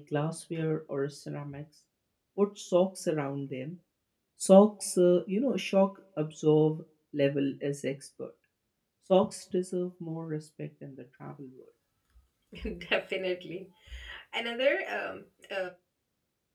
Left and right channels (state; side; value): identical; both; correlation 1.00